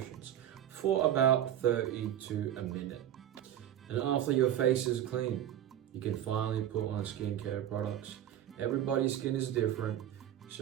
for about 30 to a minute. And after your face is clean, you can finally put on skincare products. Everybody's skin is different,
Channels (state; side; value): quieter; left; 11.2 dB